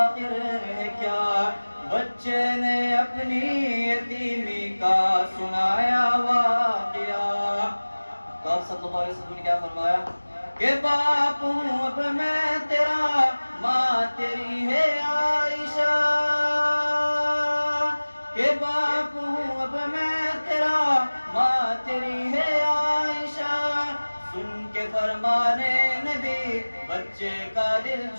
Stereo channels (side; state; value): both; inverted; correlation -1.00